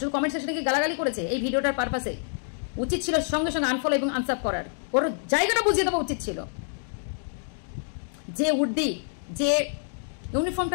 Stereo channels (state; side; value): silent; right; digital silence